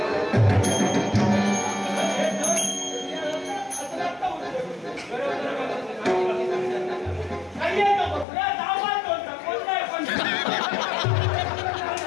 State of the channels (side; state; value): right; drops out; at 8.2 s